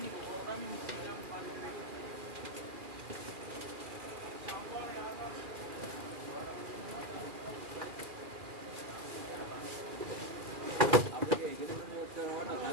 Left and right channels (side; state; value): left; late; 2.4 ms